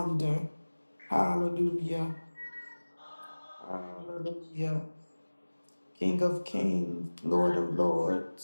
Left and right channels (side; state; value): both; inverted; correlation -1.00